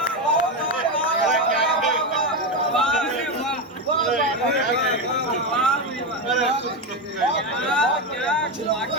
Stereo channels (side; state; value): both; normal; correlation 0.12